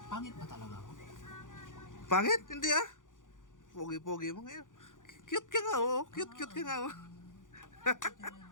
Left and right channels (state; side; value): late; right; 0.88 ms